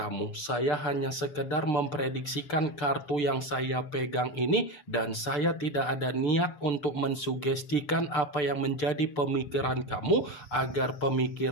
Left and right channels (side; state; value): right; late; 6.8 ms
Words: Saya hanya sekedar memprediksikan kartu yang saya pegang ini, dan saya tidak ada niat untuk mensugestikan apa yang menjadi pemikiran kamu, agar